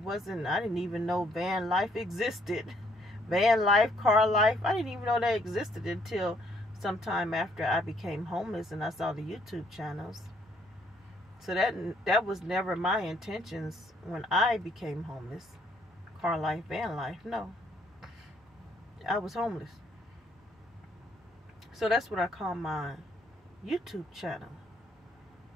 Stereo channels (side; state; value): both; normal; correlation 0.67